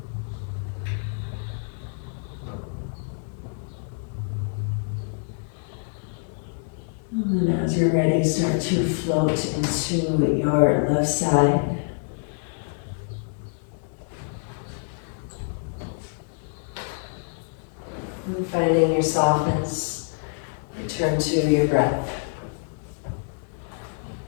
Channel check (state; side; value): silent; right; 61 dB below the other